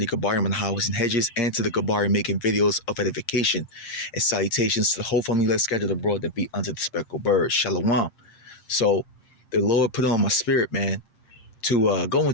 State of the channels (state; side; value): late; right; 8.6 ms